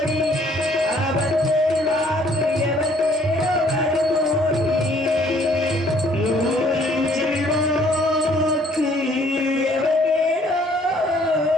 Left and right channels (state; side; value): normal; both; correlation 0.61